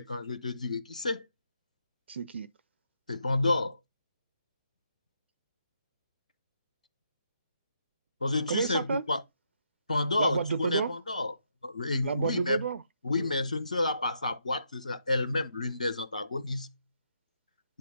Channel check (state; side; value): inverted; both; correlation -0.78